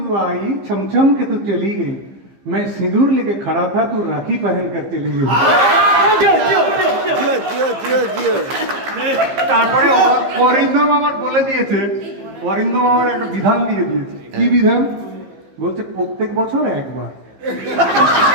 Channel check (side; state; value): left; late; 15 ms